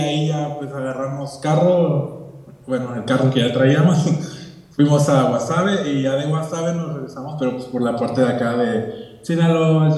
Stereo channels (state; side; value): identical; both; correlation 1.00